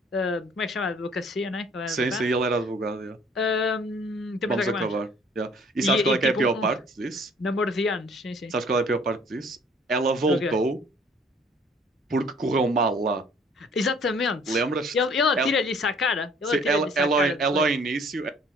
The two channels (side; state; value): both; normal; correlation 0.56